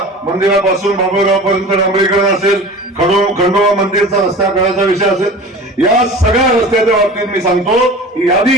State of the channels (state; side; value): normal; both; correlation 0.37